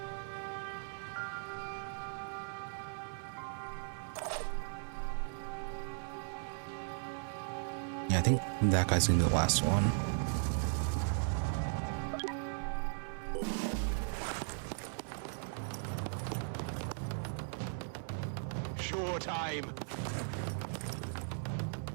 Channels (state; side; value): silent; left; 53 dB below the other